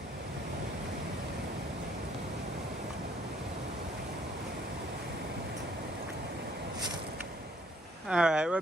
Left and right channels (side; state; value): both; normal; correlation 0.63